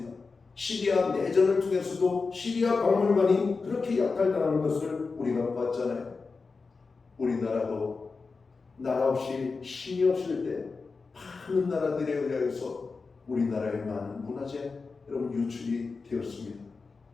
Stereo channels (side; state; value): right; quieter; 4.4 dB